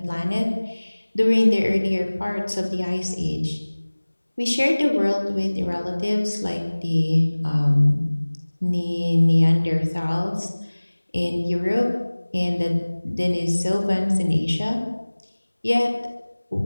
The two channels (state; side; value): inverted; both; correlation -1.00